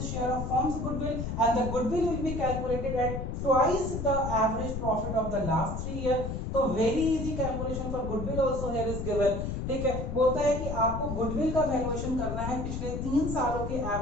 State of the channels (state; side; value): noise; left; rumble, 4 dB below the sound